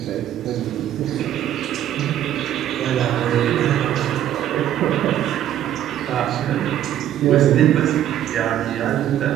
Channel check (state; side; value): quieter; left; 11.5 dB